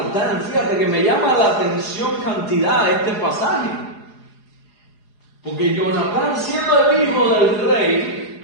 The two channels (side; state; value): right; late; 4.8 ms